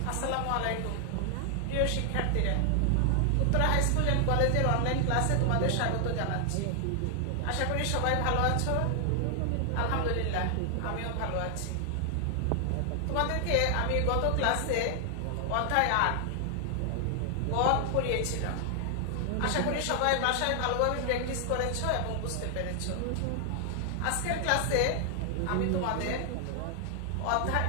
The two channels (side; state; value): both; different; correlation 0.00